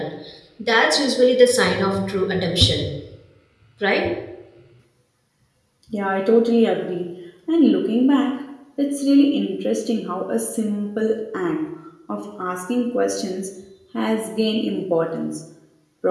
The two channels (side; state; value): both; identical; correlation 1.00